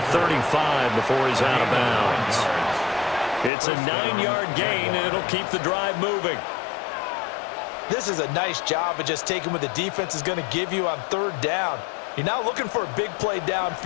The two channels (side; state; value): right; drops out; at 3.5 s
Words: 35 before he's out of bounds. It's a 9-yard gain, and it'll keep the drive moving. This is a nice job of just taking what the defense is going to give you on third down. You're not looking for a big play